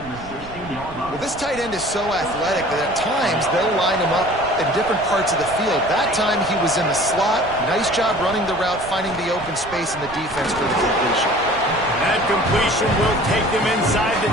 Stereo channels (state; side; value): noise; right; rumble, 16 dB below the sound